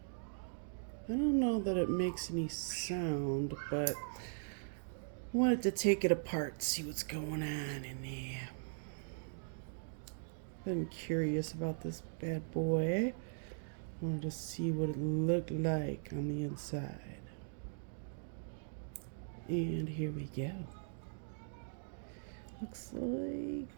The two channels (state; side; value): silent; left; digital silence